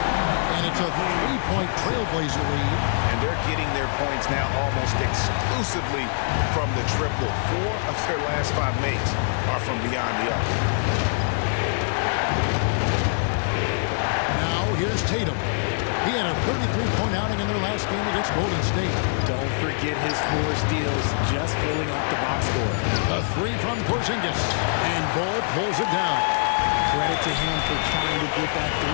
And it's a 3-point Trailblazer lead. And they're getting their points now almost exclusively from the triple. 4 of their last 5 makes are from beyond the arc. Now here's Tatum. He had a 33-point outing in their last game against Golden State. Don't forget his 4 steals, just filling up the box score. A 3 from Porzingis. And Bol pulls it down. Credit to him for trying to get that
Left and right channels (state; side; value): silent; right; digital silence